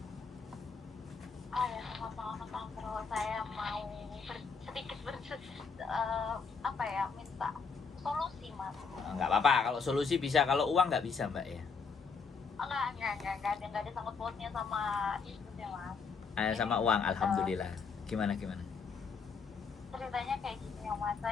Ya, selamat malam Bang Bro. Saya mau sedikit minta solusi Mas. Nggak apa-apa. Kalau solusi bisa, kalau uang nggak bisa, Mbak ya. Enggak ada sangkut pautnya sama itu ya Mas. Sama uang, alhamdulillah. Gimana? Ceritanya kayak gini ya Mas.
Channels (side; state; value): right; quieter; 5.2 dB